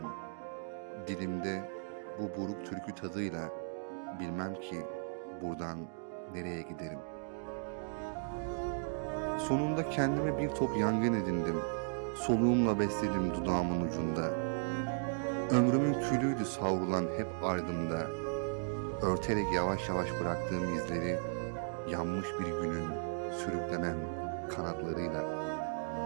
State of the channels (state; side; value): silent; left; digital silence